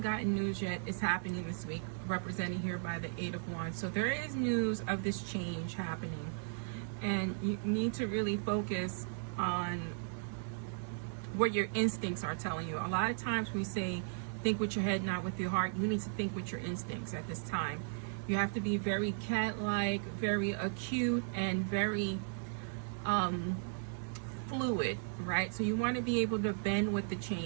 gotten news yet, it's happening this week, represented here by the 8 of Wands. So there is news of this change happening, and you need to really focus on what your instincts are telling you. A lot of times we say, think with your head, not with your heart. You need to think with your instincts at this time. You have to be very cat-like, very acute, and very fluid, right? So you want to be able to bend with the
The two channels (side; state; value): left; silent; digital silence